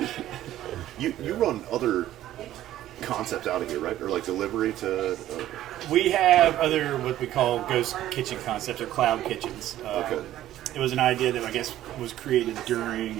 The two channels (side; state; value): left; quieter; 13.3 dB